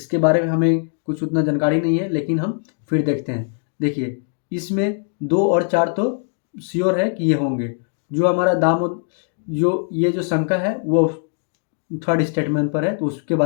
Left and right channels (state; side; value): silent; right; 60 dB below the other